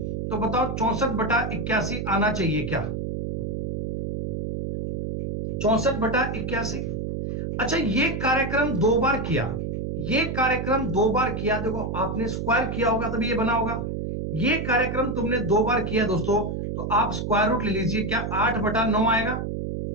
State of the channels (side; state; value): right; noise; hum, 3 dB below the sound